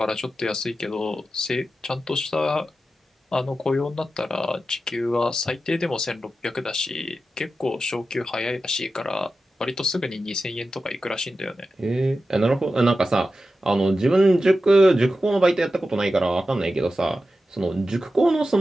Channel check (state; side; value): normal; both; correlation 0.92